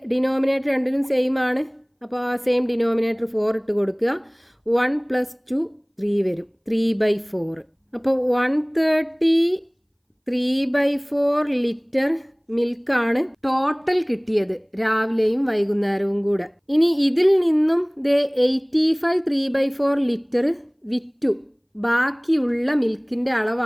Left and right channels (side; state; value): both; identical; correlation 1.00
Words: ഡിനോമിനേറ്റർ രണ്ടിനും സെയിം ആണ്. അപ്പോൾ ആ സെയിം ഡിനോമിനേറ്റർ 4 ഇട്ട് കൊടുക്കുക. 1 + 2 3 വരും, 3/4. അപ്പോൾ 130 3/4 ലിറ്റർ മിൽക്കാണ് ടോട്ടൽ കിട്ടിയത് രാവിലെയും വൈകുന്നേരവും കൂടെ. ഇനി ഇതിൽ നിന്നും 85 3/4 ലിറ്റർ വിറ്റു. ബാക്കിയുള്ള മിൽക്കിൻ്റെ